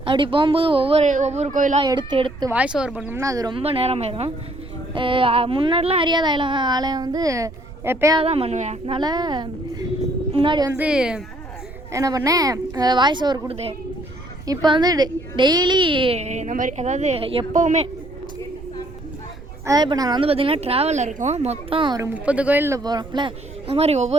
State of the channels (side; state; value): right; noise; rumble, 15 dB below the sound